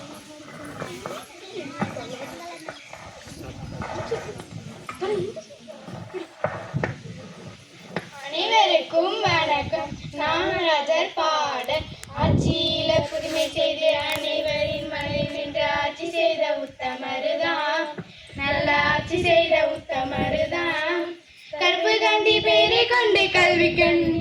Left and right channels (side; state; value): both; identical; correlation 1.00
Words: அனைவருக்கும் வணக்கம். நாமராஜர் பாட ஆட்சியில புதுமை செய்து அனைவரின் மனதில் நின்று ஆட்சி செய்த உத்தமருதாம், நல்ல ஆட்சி செய்த உத்தமருதாம். கருப்பு காந்தி பெயரை கொண்டு கல்வி கண்